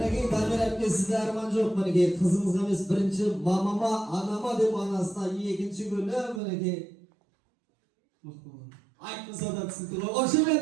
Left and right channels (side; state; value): left; drops out; at 6.4 s